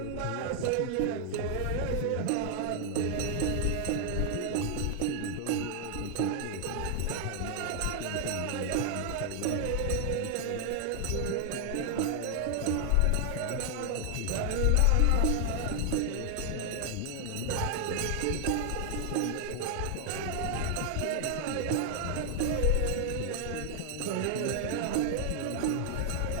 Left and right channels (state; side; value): different; both; correlation 0.00